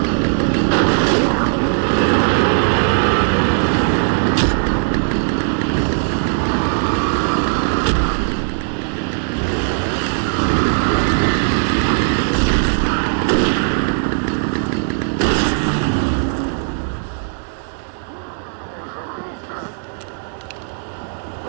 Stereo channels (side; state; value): left; silent; digital silence